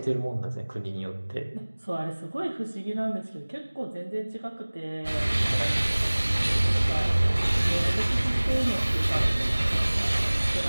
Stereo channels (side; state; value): both; inverted; correlation -1.00